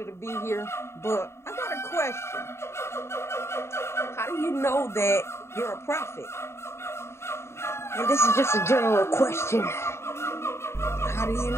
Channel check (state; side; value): late; right; 0.13 ms